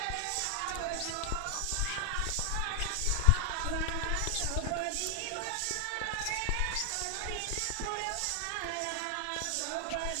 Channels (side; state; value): both; different; correlation 0.00